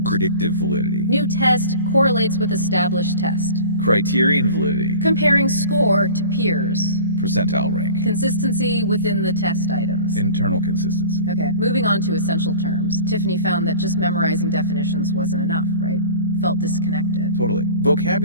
Predictive validity. New test correlates with established test. Criterion validity. Comparing score to peers. Percentile rank. Consistency within the test items. Internal consistency. Okay, moving on to essential terms. Tiffany found that just memorizing definitions wasn't enough, right? Felt disconnected. Totally.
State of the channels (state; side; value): inverted; both; correlation -0.41